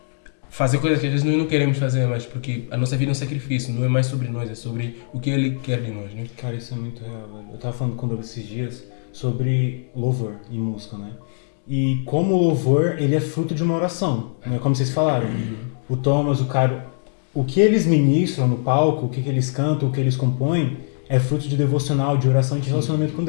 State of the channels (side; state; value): right; silent; digital silence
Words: fazer coisas que às vezes nós não queremos fazer, mas porque a nossa vida é um sacrifício, não é mais sobre nós, é sobre o que Ele quer de nós, né? Cara, isso é muito real, velho. Eu tava falando com o Douglas esses dias sobre louvor e música, né? E como o louvor, ele é fruto de uma oração, né? Como vocês falaram. O Thomas, o Caro, o que eles ministram no palco, o que eles cantam, o que eles compõem, é fruto de devocional, de oração e de relacionamento com